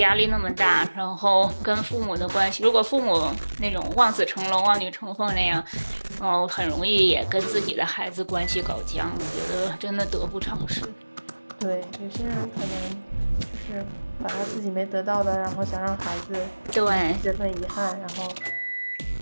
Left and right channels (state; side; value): inverted; both; correlation -1.00